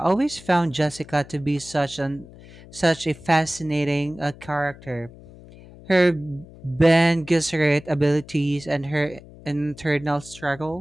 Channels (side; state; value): left; noise; hum, 20 dB below the sound